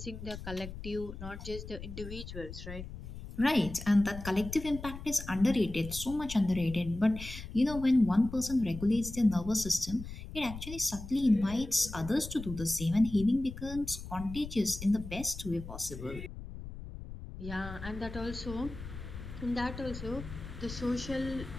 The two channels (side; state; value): left; noise; rumble, 11 dB below the sound